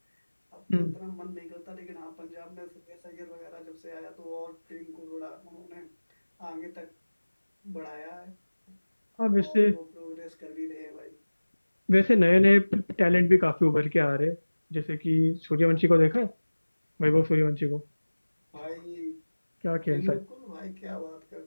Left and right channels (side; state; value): both; inverted; correlation -1.00